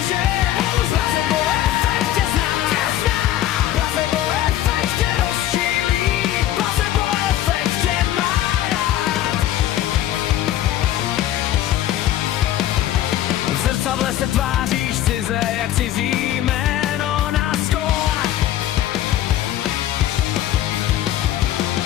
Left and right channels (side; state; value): right; quieter; 12.8 dB